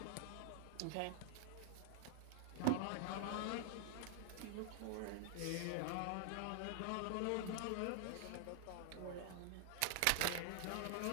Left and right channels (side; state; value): both; different; correlation -0.01